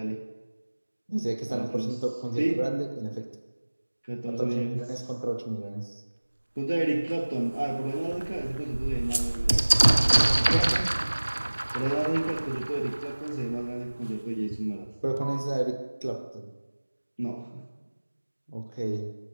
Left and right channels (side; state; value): both; inverted; correlation -1.00